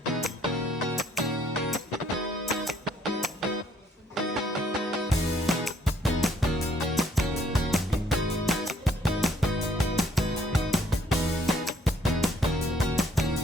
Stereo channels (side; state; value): both; normal; correlation 0.65